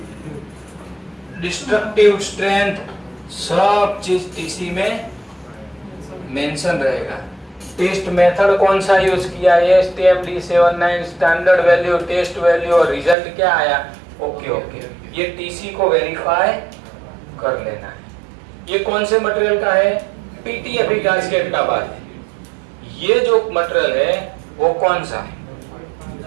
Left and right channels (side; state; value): left; drops out; at 13.2 s